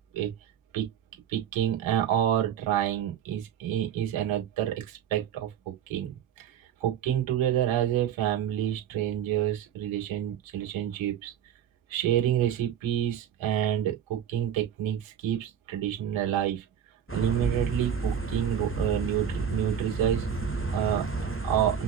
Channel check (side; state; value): left; quieter; 9.2 dB